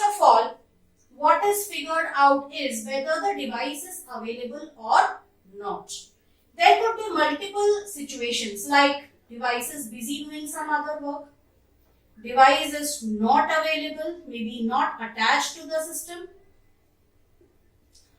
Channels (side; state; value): both; identical; correlation 1.00